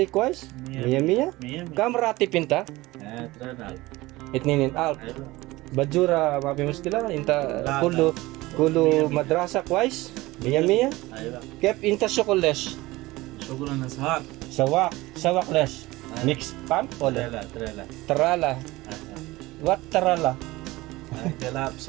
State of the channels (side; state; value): left; quieter; 19.7 dB